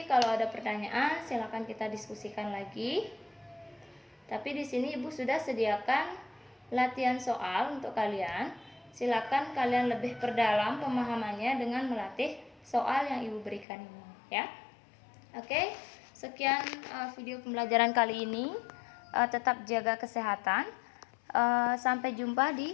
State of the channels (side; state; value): right; drops out; at 13.7 s